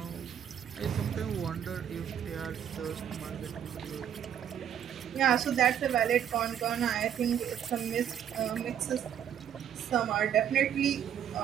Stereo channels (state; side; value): quieter; left; 9.4 dB